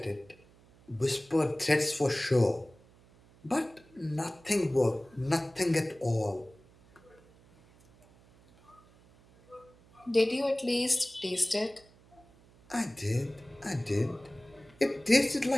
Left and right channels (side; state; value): right; noise; hum, 27 dB below the sound